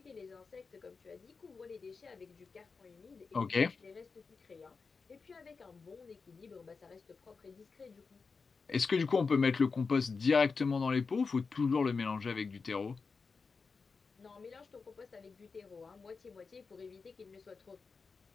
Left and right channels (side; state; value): right; quieter; 4.8 dB